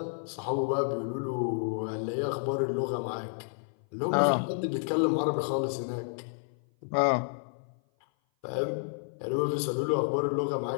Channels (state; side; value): silent; right; 56 dB below the other